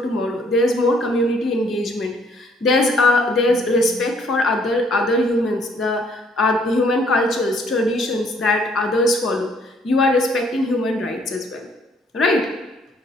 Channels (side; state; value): both; normal; correlation 0.64